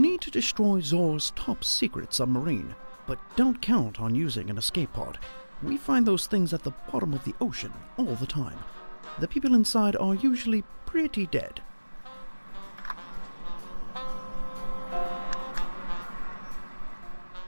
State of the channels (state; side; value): inverted; both; correlation -1.00